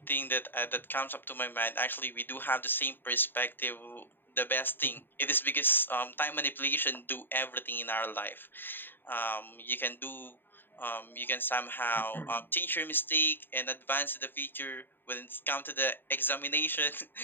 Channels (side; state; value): right; late; 0.096 ms